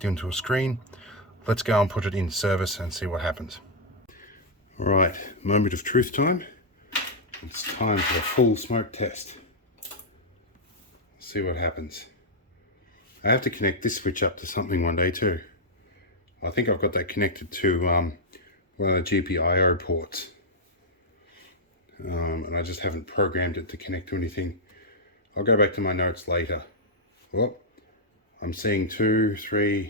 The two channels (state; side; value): normal; both; correlation -0.04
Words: into a screen. Let's go and put it in service and see what happens. All right, moment of truth time. It's time for the full smoke test. See what happens. I have to connect this switch up to something one day too. I think I've got that connected to one of the GPIO ports. And I just haven't programmed it to connect to anything. I'll go back to my notes later. Oh, I'm seeing 2,